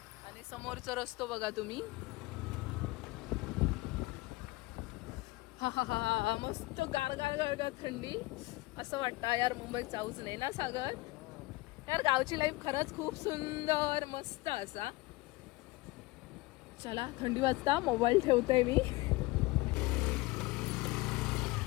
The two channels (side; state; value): right; quieter; 21.3 dB